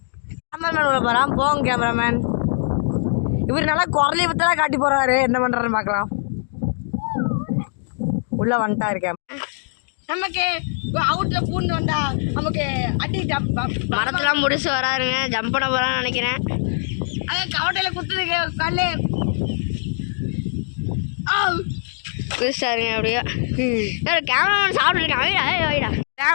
கேமராமேன் உள்ள போகிறான். போங்க கேமராமேன். இவர் நல்லா குரலை பற்றலாம் காட்டி போகிறாரு. என்ன பண்ணுறாருன்னு பார்க்கலாம். உள்ளே வந்துட்டா இருக்கேன். நமக்கு அவுட்டில் பூண்டு வந்தா நமக்கு அடி மரத்தெல்லாம் முடிச்சு வராருங்க. ஜம்ப் பண்ண போகிறான்னு நினைக்கிறேன். அதான் கவட்டையில் குத்துதுக்கு கல்லு புதுசாருங்க. அப்படியே கேமராமேன் சாப்பிட்டுருக்காங்க.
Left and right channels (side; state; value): right; silent; digital silence